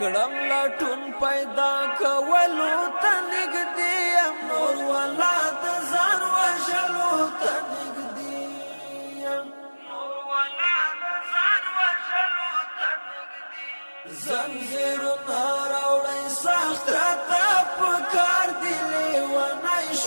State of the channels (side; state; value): both; inverted; correlation -1.00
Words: لټون پیدا کولو ته نږدې یم نور والا د ځان وژلو ته نږدې یم زنجیرونه راوړی سخت راته په کار دی لیونی